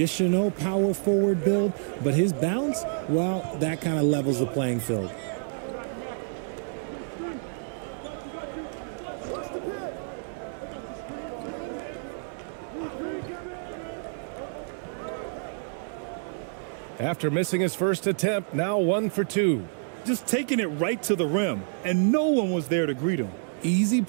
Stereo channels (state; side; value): silent; left; digital silence